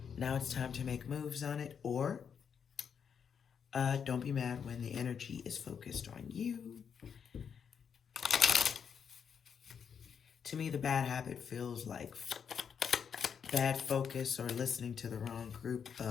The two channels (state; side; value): quieter; right; 7.2 dB